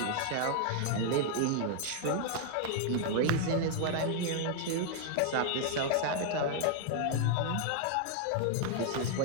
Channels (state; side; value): different; both; correlation 0.00